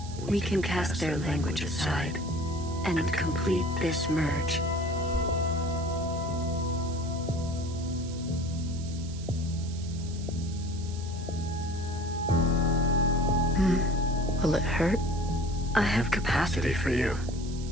We can cast their language aside and complete this merge. Will it hurt? I have capacity for you.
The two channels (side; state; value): right; noise; hiss, 17 dB below the sound